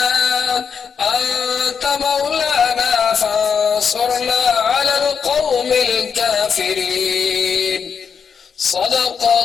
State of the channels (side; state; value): right; quieter; 6.5 dB